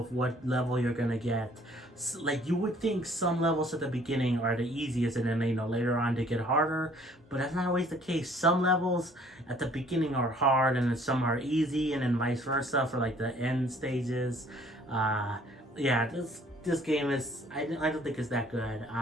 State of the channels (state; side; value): normal; both; correlation 0.58